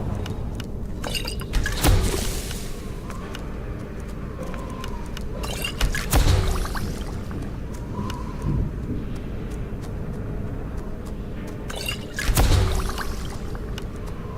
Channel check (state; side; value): identical; both; correlation 1.00